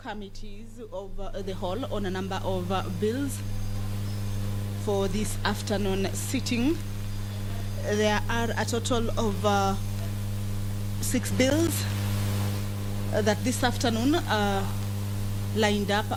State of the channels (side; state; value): both; identical; correlation 1.00